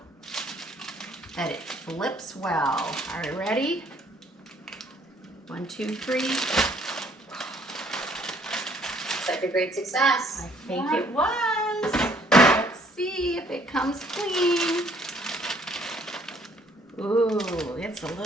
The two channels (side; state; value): both; normal; correlation 0.62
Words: that it flips well. Are you ready? 1, 2, 3. Such a great success. I think it was. Let's see if it comes clean. Ooh, it's a